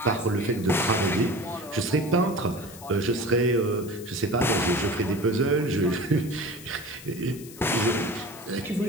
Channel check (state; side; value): noise; left; hiss, 17 dB below the sound